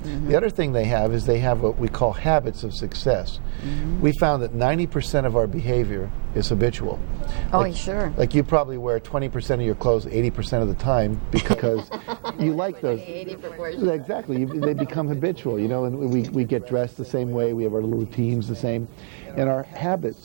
The other thing they have is they have what we call habits of success. We found that 90% of our behavior is habitual. Oh, sure. Like you probably wear 20% of your clothes 80% of the time because you like those. 80 proportion. Exactly. They become habitual, you know, and we get dressed the same way. We have our little routines the same. And our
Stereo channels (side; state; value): left; silent; digital silence